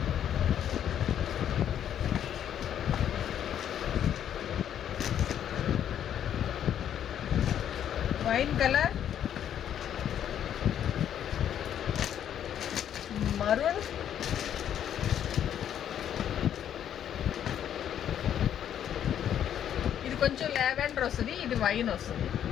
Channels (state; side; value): quieter; right; 9.9 dB